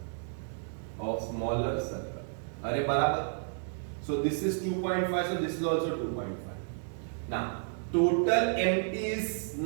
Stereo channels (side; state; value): left; silent; digital silence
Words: अरे बराबर. So this is 2.5, so this is also 2.5. Now total mt is